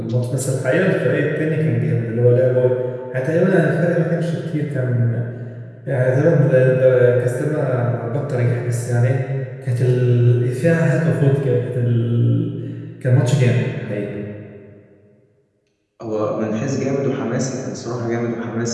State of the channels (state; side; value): identical; both; correlation 1.00